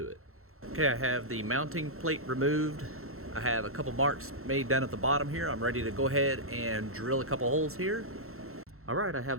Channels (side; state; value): left; late; 0.63 ms